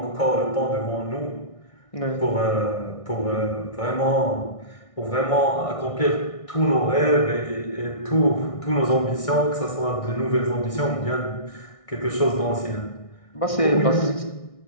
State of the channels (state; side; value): late; right; 1.6 ms